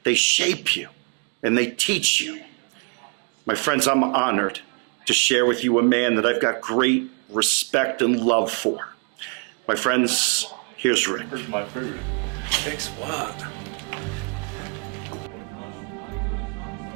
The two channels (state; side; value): quieter; left; 39.7 dB